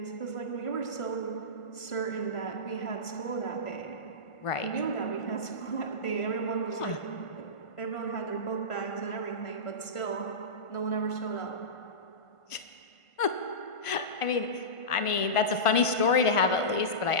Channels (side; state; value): right; late; 1.5 ms